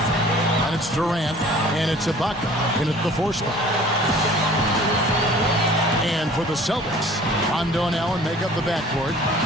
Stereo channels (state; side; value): normal; both; correlation 0.49